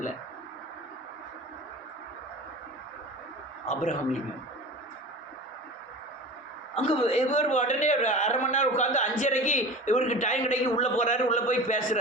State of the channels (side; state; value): both; normal; correlation 0.35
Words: ஆப்ரஹாம் லிங்கம் அங்கே இவர் உடனே ஒரு 1/2 மணி நேரம் உட்காந்து 5:30க்கு இவருக்கு டைம் கிடைக்கி உள்ளே போகிறாரு. உள்ளே போய்